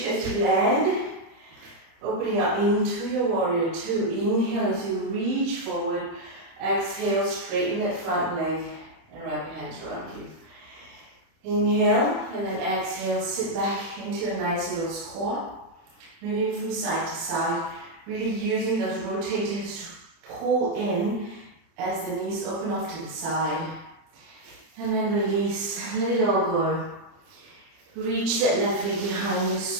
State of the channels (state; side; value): late; left; 30 ms